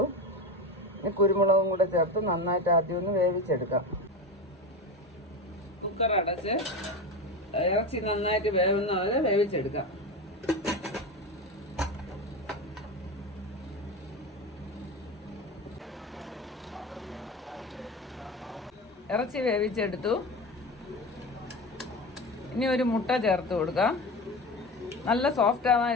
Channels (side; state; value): both; normal; correlation 0.24